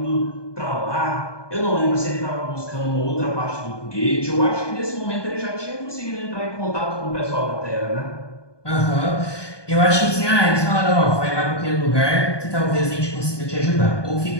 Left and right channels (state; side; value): late; right; 1.2 ms